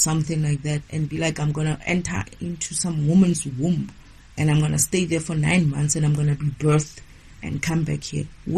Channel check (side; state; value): both; identical; correlation 1.00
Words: like that and be like, I'm going to enter into some woman's womb and I'm going to stay there for 9 months and I'm going to be birthed and come back here?